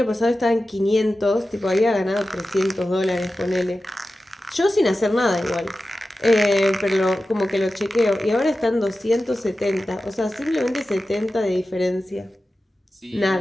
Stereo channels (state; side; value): normal; both; correlation 0.94